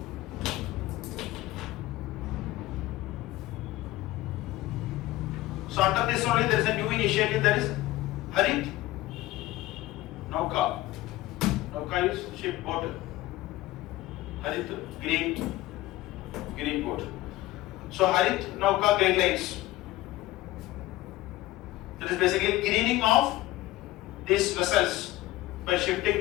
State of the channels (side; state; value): right; quieter; 17.1 dB